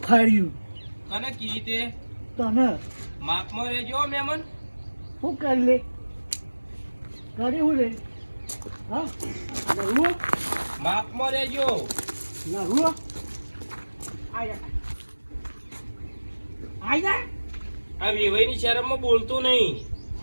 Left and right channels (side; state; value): both; inverted; correlation -1.00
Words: ફાડ્યું કને કી તે તને માપમાં રહેજો મહેમાન. શું કરી લે કરી હું લે હા લહુઓ માપમાં રહેજો. લહુઓ આયા આયા આ વેવાઈની શરમમાં બોલતો નહીં.